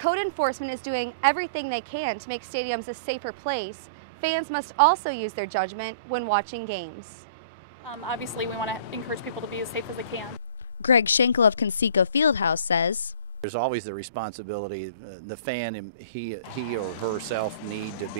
enforcement is doing everything they can to make stadiums a safer place, fans must also use their judgment when watching games. Obviously, we want to encourage people to be as safe as they can. Greg Schenkel of Conseco Fieldhouse says, There's always the responsibility. The fan, he or herself, need to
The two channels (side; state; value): both; inverted; correlation -0.41